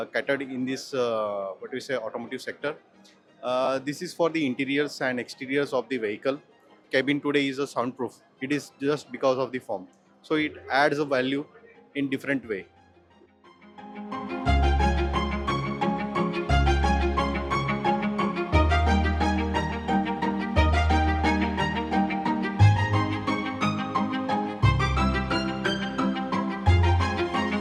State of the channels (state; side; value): identical; both; correlation 1.00